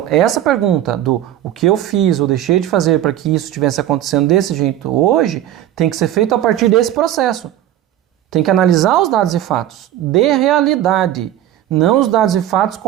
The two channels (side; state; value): left; quieter; 12.2 dB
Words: essa pergunta do o que eu fiz ou deixei de fazer para que isso estivesse acontecendo desse jeito hoje, tem que ser feito a partir desse processo. Tem que analisar os dados e fatos de realidade, não os dados e fatos